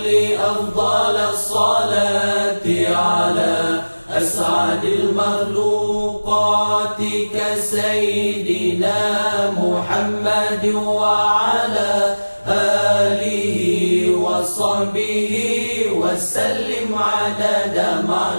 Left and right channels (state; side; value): inverted; both; correlation -1.00